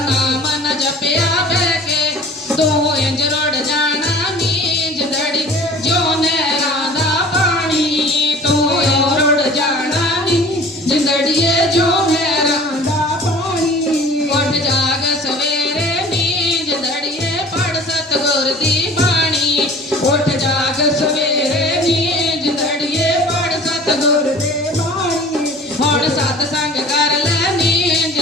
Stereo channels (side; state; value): both; normal; correlation 0.45